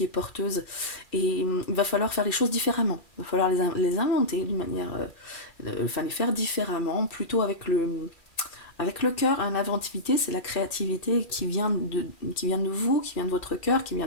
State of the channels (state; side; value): late; right; 2.4 ms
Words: est porteuse. Et il va falloir faire les choses différemment. Il va falloir les inventer d'une manière... les faire différemment, plutôt avec le cœur. L'inventivité, c'est la créativité qui vient de vous, qui vient de votre cœur, qui